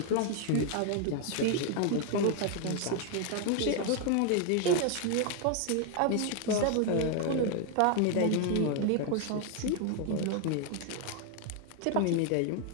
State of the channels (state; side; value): different; both; correlation 0.00